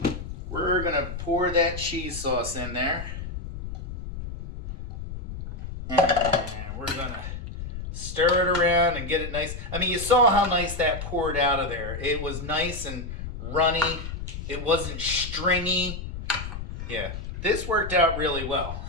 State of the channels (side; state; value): left; noise; rumble, 8 dB below the sound